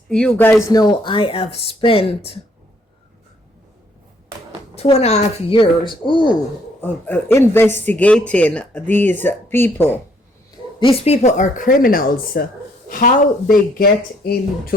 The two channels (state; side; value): normal; both; correlation 0.67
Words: you guys know, I have spent 2.5 years investigating these people. These people are criminals. How they get